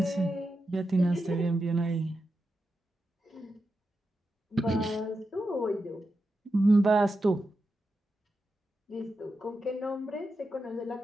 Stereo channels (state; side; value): normal; both; correlation 0.89